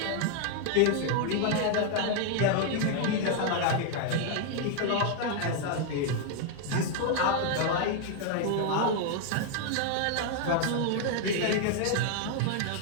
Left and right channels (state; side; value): different; both; correlation 0.00